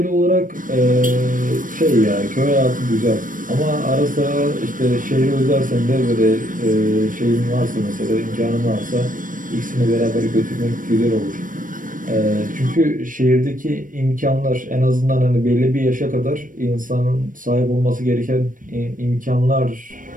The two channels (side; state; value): left; late; 0.39 ms